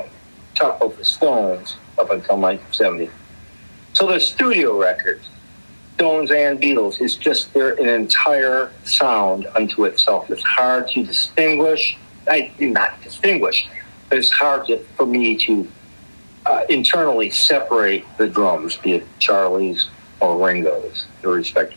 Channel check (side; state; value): both; inverted; correlation -1.00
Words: talk about the Stones up until 1970. So the studio records, Stones and Beatles, is just they're an entire sound unto itself. It's hard to distinguish. Not distinguish, but it's hard for me to internally separate the drums, be it Charlie's or Ringo's, the